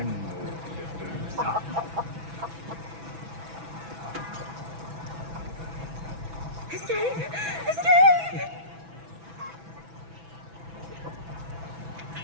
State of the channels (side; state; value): left; late; 6.1 ms